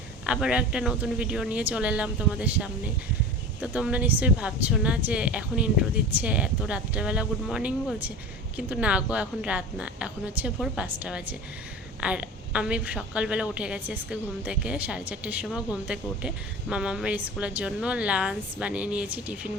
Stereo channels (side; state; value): both; normal; correlation 0.34